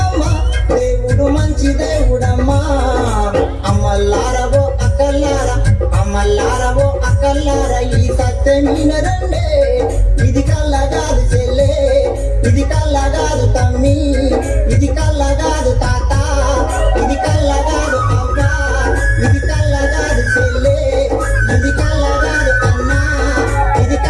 దేవుడు మంచి దేవుడమ్మా అమల్లారవో అకల్లార ఈ సత్యం వినరండే ఇది కళ్ళగాదు చెల్లే ఇది కళ్ళగాదు తమ్మి ఇది కళ్ళగాదు తాత ఇది కళ్ళగాదు అవ్వ ఇది కళ్ళగాదు చెల్లే ఇది కళ్ళగాదు అన్న ఇది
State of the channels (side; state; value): both; identical; correlation 1.00